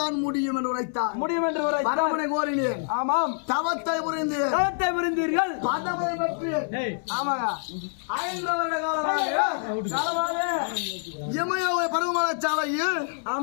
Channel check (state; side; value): silent; right; 60 dB below the other